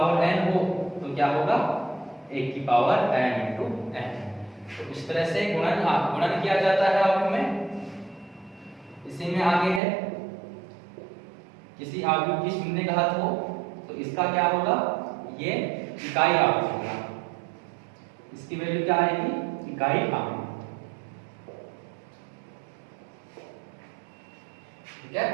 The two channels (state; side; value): drops out; left; at 9.8 s